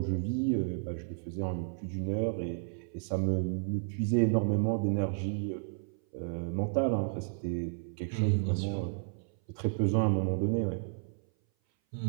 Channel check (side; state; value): left; silent; 56 dB below the other